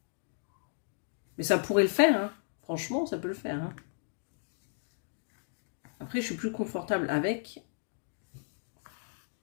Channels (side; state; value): right; silent; digital silence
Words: Mais ça pourrait le faire, hein. Franchement, ça peut le faire, hein. Après, je suis plus confortable avec.